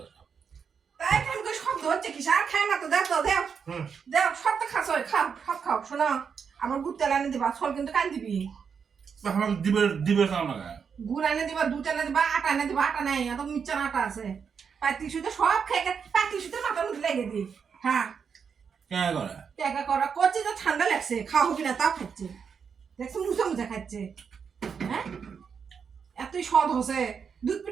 তাই কেন করে শব্দ হচ্ছে কি? আর খায় না তো, দেও তো দেও দেও, সব তো খাচ্ছ, খাও সব খাও। শোনো আমার গুড় তেল এনে দিবা, ছল কিন্তু কান দিবি। আমাকে দিবে দিবে খাও না। গুড় এনে দিবা, দুধ এনে দিবা, আটা এনে দিবা। আটা নাই, এত মিচ্ছার আটা আছে। পাতি সুতো সব খেয়ে পাতি সুতো মাথার মধ্যে লেগে দি। হ্যাঁ কেন করে? টেকা করা করছি তো ঠান্ডা লাগছে, খাওয়া হবি না তাও খাচ্ছে। দেখছো মুছে মুছে খাচ্ছে। হ্যাঁ এতই স্বাদ হচ্ছে, দুধ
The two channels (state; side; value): quieter; left; 6.5 dB